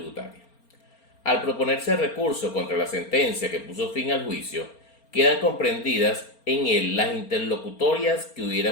Al proponerse el recurso contra la sentencia que puso fin al juicio, quedan comprendidas en él las interlocutorias que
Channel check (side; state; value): right; late; 4.3 ms